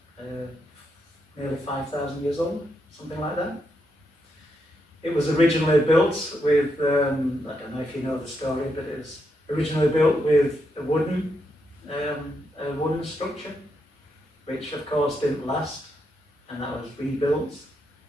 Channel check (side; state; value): both; normal; correlation 0.81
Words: nearly 5,000 years old, something like that. It was originally built with, I don't know if you know the story, but it was originally built with a wooden structure, which of course didn't last, and that was rebuilt.